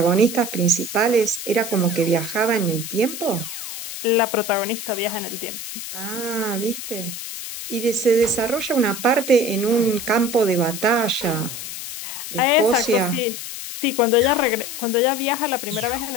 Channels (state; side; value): noise; left; hiss, 8 dB below the sound